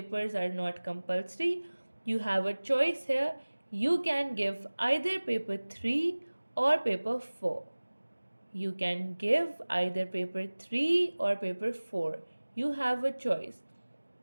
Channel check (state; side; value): inverted; both; correlation -1.00